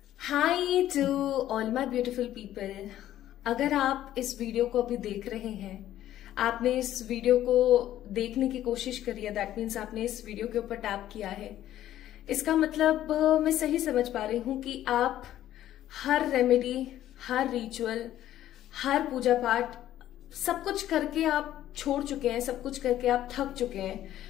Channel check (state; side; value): quieter; right; 12.7 dB